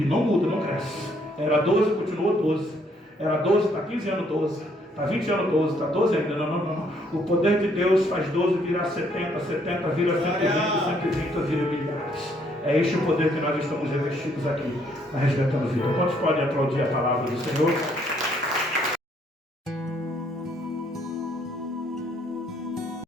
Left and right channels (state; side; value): normal; both; correlation 0.68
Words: não muda, não cresce. Era 12, continuou 12. Era 12, está 15 anos 12. Está 20 anos 12, está 12 ainda, não. O poder de Deus faz 12 virar 70, 70 vira 120, 120 vira milhares. É este o poder que nós estamos revestidos aqui, na Resgatando Vida. Quantos podem aplaudir a palavra do Senhor?